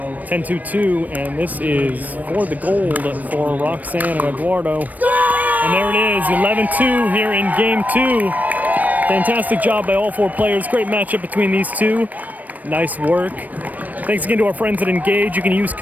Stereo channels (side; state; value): left; late; 0.079 ms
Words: 10-2-2, and this is for the gold for Roxanne and Eduardo. And there it is, 11-2 here in game 2. Fantastic job by all 4 players. Great matchup between these two. Nice work. Thanks again to our friends at Engage. You can use